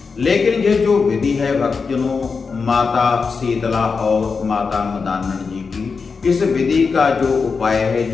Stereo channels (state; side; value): quieter; right; 5.0 dB